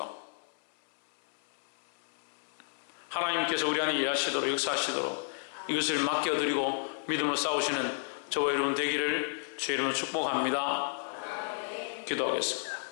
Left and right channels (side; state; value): right; silent; 56 dB below the other